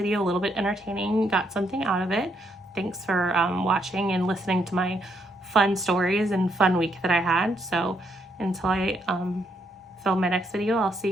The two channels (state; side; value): normal; both; correlation 0.75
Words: a little bit entertaining, got something out of it. Thanks for watching and listening to my fun stories and fun week that I had. So until I film my next video, I'll see